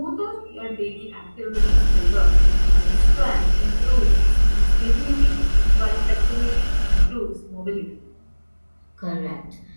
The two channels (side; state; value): both; inverted; correlation -1.00